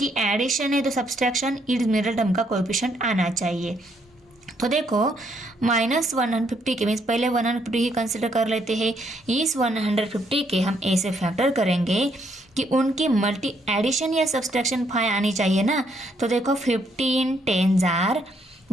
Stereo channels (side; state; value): both; normal; correlation 0.72